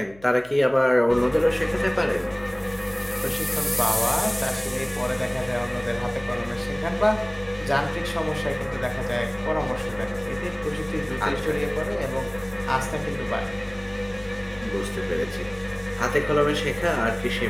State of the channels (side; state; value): left; noise; hum, 24 dB below the sound